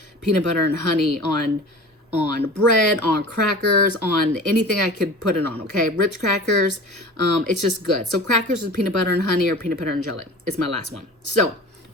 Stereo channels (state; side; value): normal; both; correlation 0.38